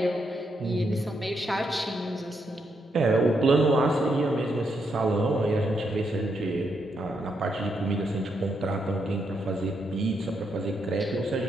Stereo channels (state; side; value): normal; both; correlation 0.80